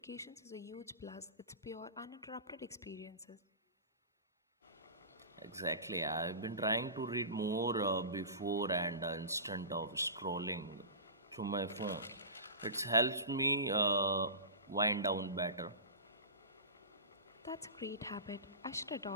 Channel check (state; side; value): inverted; both; correlation -0.31